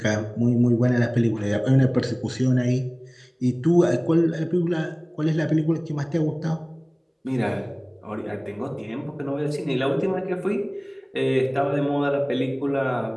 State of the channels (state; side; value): identical; both; correlation 1.00